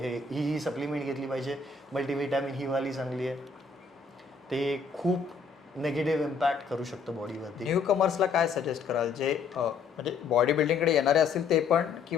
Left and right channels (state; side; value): quieter; right; 5.1 dB